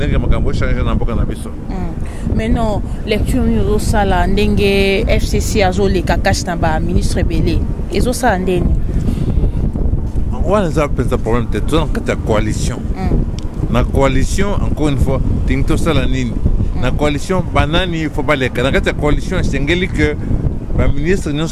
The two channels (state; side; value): identical; both; correlation 1.00